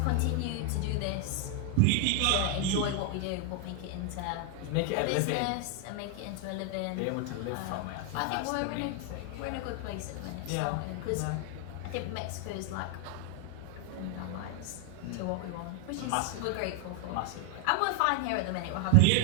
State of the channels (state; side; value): different; both; correlation 0.00